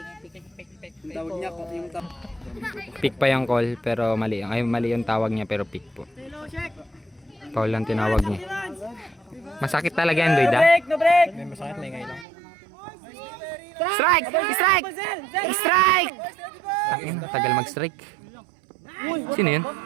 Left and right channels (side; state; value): left; drops out; at 12.2 s